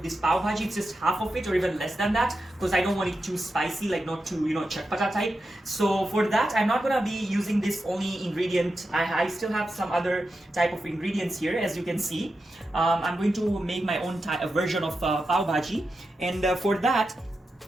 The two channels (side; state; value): both; normal; correlation 0.89